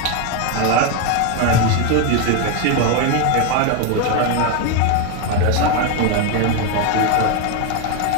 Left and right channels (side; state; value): both; different; correlation 0.02